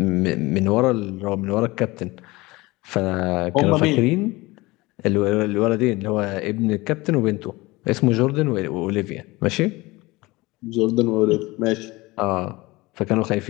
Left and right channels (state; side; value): quieter; right; 21.7 dB